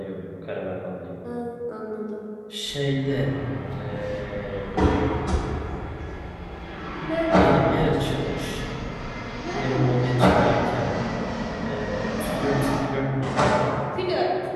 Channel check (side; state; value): both; identical; correlation 1.00